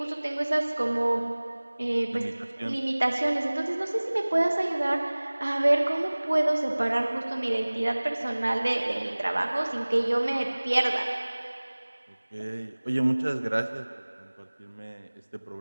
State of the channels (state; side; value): inverted; both; correlation -1.00